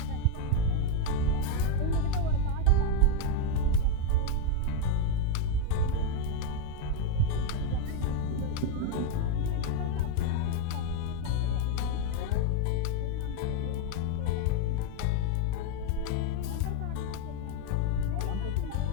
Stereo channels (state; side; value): different; both; correlation 0.01